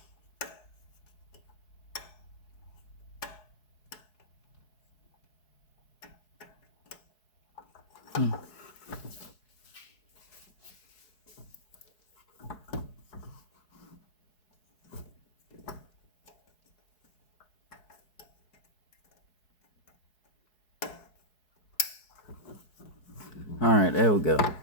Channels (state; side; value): late; right; 4.7 ms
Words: All right, there we go.